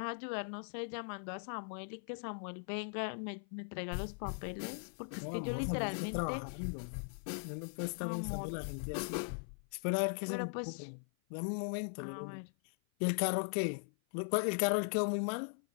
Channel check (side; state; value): right; silent; 51 dB below the other